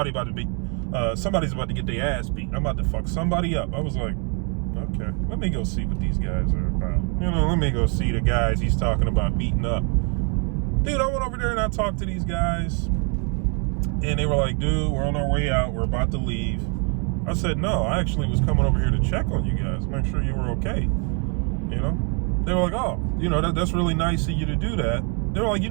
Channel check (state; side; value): quieter; left; 38.0 dB